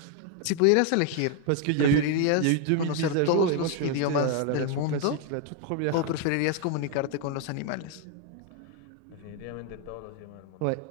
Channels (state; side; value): different; both; correlation 0.00